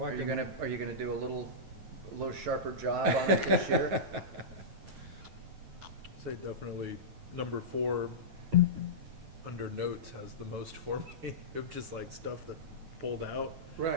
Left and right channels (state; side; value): late; left; 9.2 ms